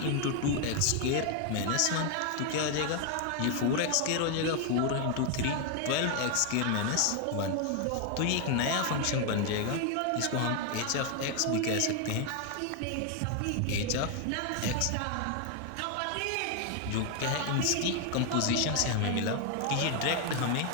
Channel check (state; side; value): different; both; correlation 0.01